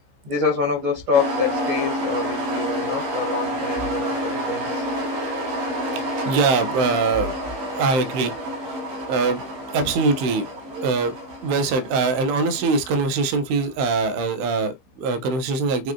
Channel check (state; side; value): late; left; 15 ms